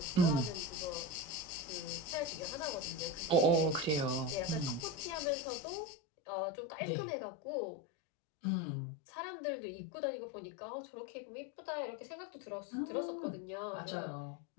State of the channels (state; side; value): drops out; right; at 5.2 s